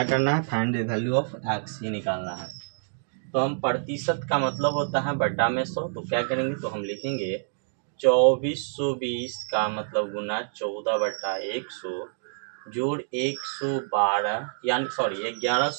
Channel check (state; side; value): silent; left; digital silence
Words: करना है? Find the value of x ही निकालना है। तो हम प्रतिशत का मतलब होता है बटा में 100। तो क्या करेंगे? तो हम लिखेंगे 2420 का मतलब गुना 14/100 जोड़ 112 यानी